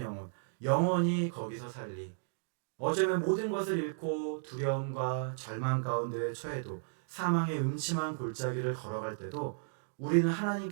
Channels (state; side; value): silent; left; digital silence